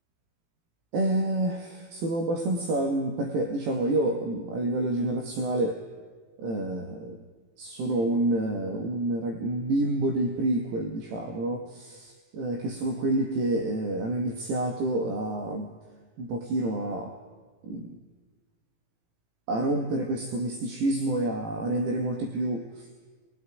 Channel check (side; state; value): left; late; 18 ms